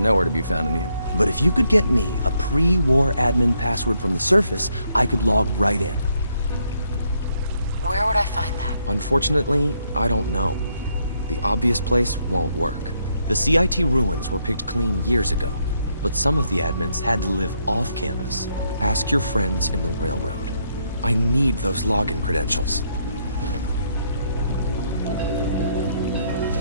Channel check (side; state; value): both; inverted; correlation -0.74